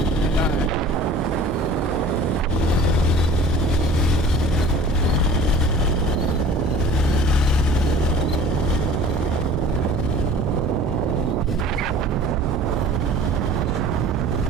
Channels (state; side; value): normal; both; correlation 0.44